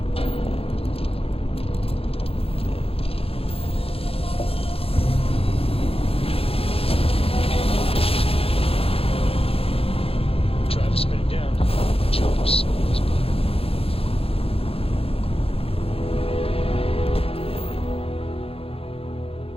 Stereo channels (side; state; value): right; late; 0.28 ms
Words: Try to spin it down. Jump slow as butter.